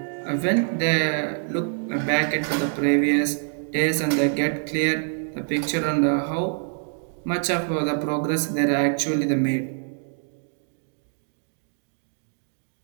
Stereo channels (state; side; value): silent; left; 56 dB below the other